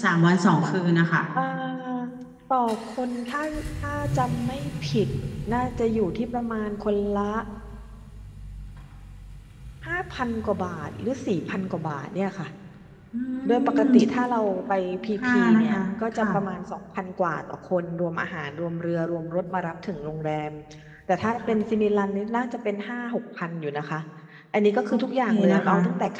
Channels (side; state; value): both; identical; correlation 1.00